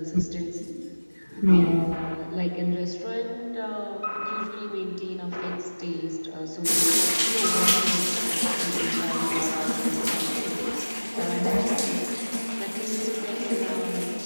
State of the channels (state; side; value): inverted; both; correlation -1.00